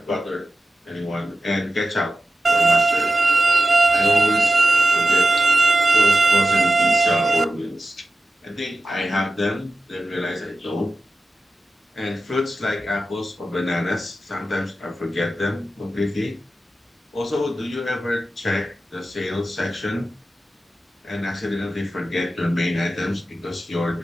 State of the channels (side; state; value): both; normal; correlation 0.92